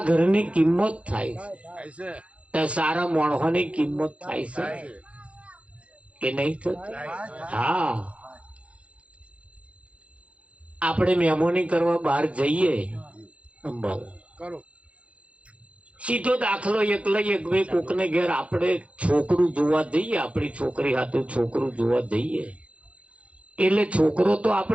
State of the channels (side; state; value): left; late; 0.062 ms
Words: ઘરની કિંમત થાય છે તો સારા માણસોની કિંમત થાય છે કે નહીં થતી? હા, આપણે મહેમાની કરવા બહાર જઈએ, સીધો દાખલો એક લઈએ, કોકને ઘેર આપણે છોકરું જોવા જઈએ, આપણી છોકરી હાથું છોકરું જોવા જઈએ, એટલે છોકરો તો